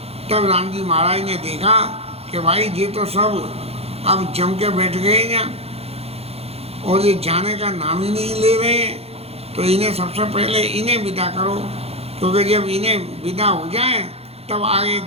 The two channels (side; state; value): left; late; 0.29 ms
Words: तब राम जी महाराज ने देखा कि भाई ये तो सब अब जम के बैठ गए हैं और ये जाने का नाम ही नहीं ले रहे हैं, तो इन्हें सबसे पहले इन्हें विदा करो, क्योंकि जब इन्हें विदा हो जाए तब आगे